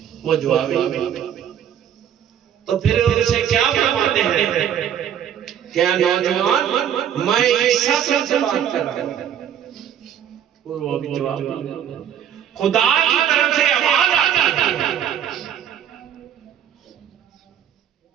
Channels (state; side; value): quieter; left; 9.6 dB